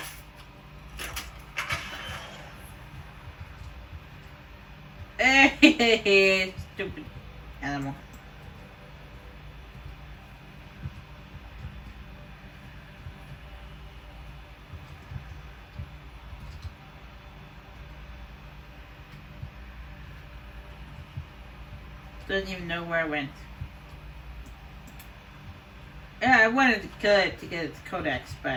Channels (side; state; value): both; identical; correlation 1.00